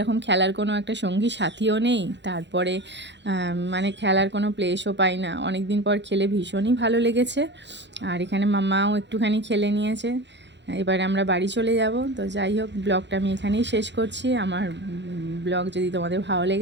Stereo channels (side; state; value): left; late; 0.52 ms